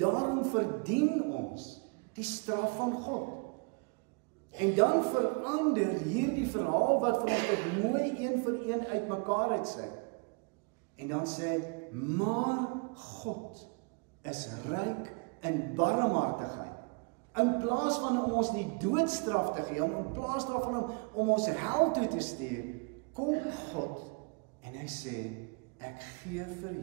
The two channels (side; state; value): left; quieter; 33.6 dB